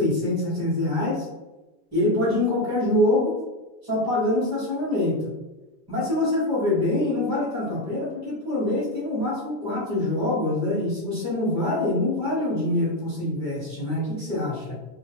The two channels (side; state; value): left; late; 7.1 ms